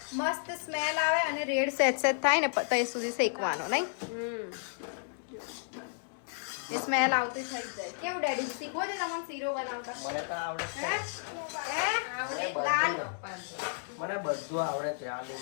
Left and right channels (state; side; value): silent; right; digital silence